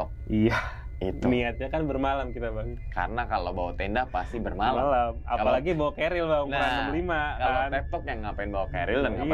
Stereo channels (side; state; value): both; identical; correlation 1.00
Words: Iya. Itu. Niatnya kan bermalam kita Bang. Karena kalau bawa tenda pasti bermalam. Apalagi bawa keril Bang, ukuran 65 kalau kan. tektok yang ngapain bawa keril dan